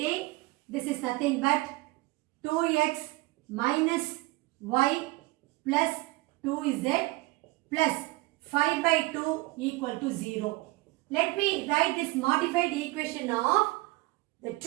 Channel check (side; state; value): left; quieter; 21.8 dB